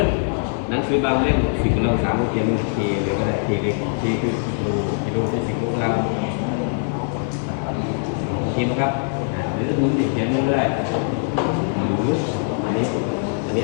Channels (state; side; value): silent; right; digital silence